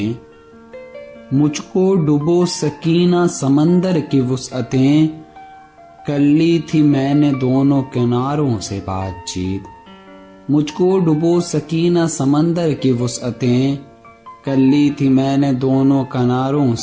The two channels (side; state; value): both; identical; correlation 1.00